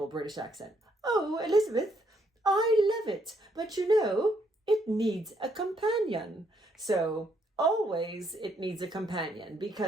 British accent. "Oh, Elizabeth, I love it, but you know, it needs a companion." So always it needs a companion,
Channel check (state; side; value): normal; both; correlation 0.72